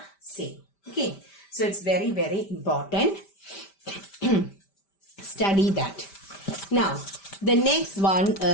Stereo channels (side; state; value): right; late; 5.1 ms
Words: same. Okay, so it's very, very important. Study that. Now, the next one